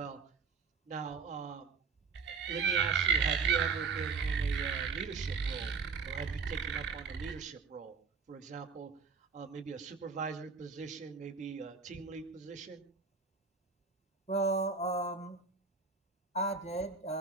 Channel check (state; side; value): quieter; left; 5.1 dB